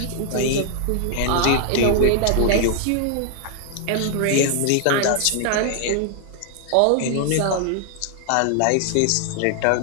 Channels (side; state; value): both; different; correlation 0.00